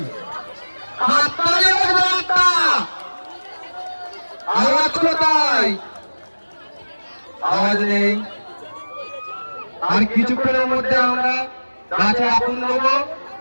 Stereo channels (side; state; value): both; inverted; correlation -1.00